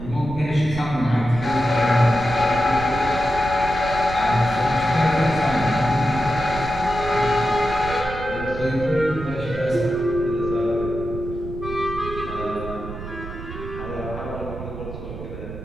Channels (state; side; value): noise; right; rumble, 10 dB below the sound